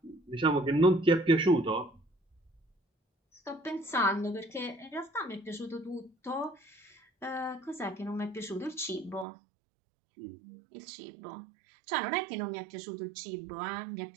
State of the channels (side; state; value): left; drops out; at 9.2 s